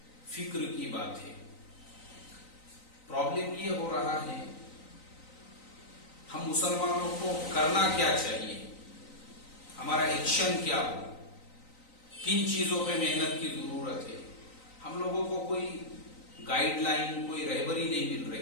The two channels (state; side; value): late; right; 3.9 ms